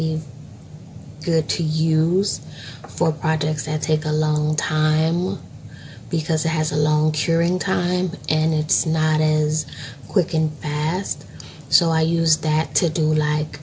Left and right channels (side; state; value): both; identical; correlation 1.00